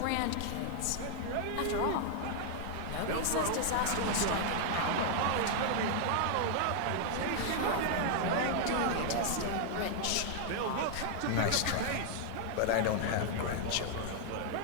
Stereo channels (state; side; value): different; both; correlation 0.00